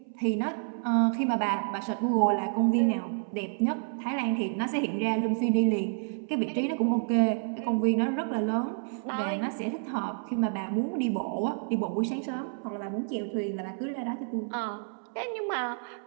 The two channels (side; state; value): left; silent; 58 dB below the other